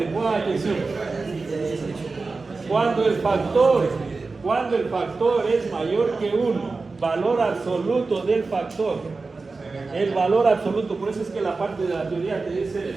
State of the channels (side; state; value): left; quieter; 3.9 dB